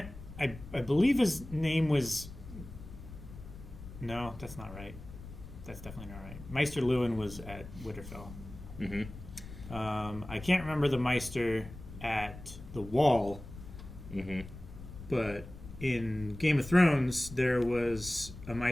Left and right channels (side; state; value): left; noise; rumble, 14 dB below the sound